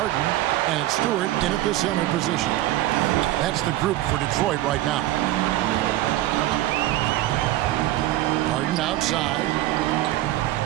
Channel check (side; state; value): left; quieter; 15.3 dB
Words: and it's Stewart in at the center position. That's the group for Detroit right now. Harden outside.